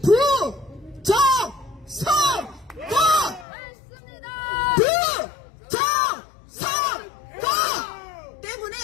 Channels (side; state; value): right; drops out; at 3.5 s